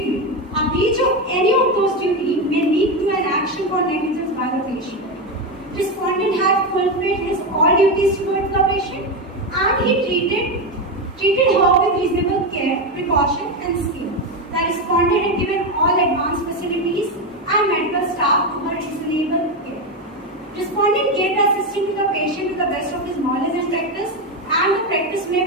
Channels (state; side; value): normal; both; correlation 0.12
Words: A breach of any of those duties may lead to an action for negligence by the patient. Respondent had fulfilled his all duties towards the patient and he treated her with reasonable care, precaution and skill. The respondent had given all advanced facilities and medical staff to her reasonable care. Respondent gave the assistance to the patient to the best of his knowledge and practice, and the practice